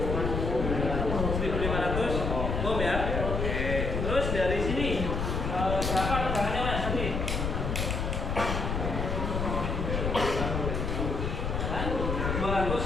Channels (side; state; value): left; noise; rumble, 1 dB below the sound